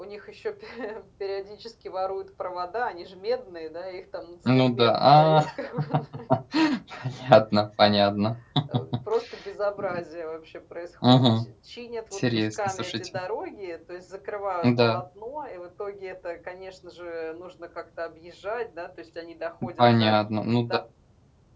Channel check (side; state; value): both; identical; correlation 1.00